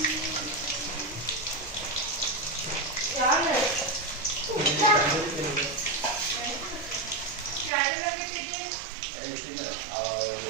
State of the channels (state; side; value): drops out; left; at 7.7 s